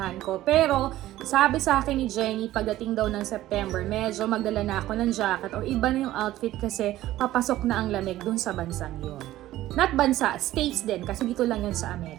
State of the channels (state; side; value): quieter; left; 14.8 dB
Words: ko. Pero, sabi sa akin ni Jenny, pagdating daw ng September, medyo magdala na ako ng jacket o iba na yung outfit kasi papasok na ang lamig dun sa bansang yun. Not bansa, states din kasi dito lang yun sa